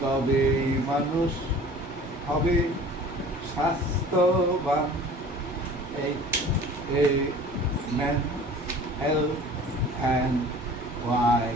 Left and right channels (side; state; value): both; normal; correlation 0.45